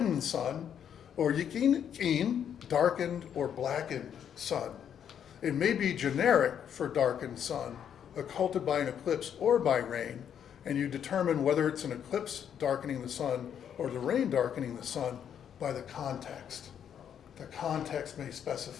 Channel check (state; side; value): quieter; right; 8.8 dB